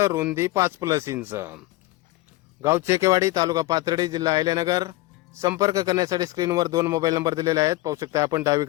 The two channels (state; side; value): quieter; right; 19.1 dB